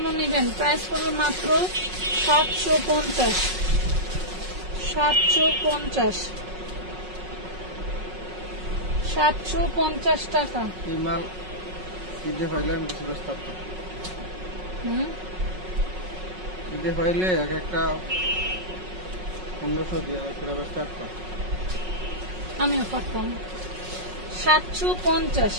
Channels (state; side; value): late; left; 5.4 ms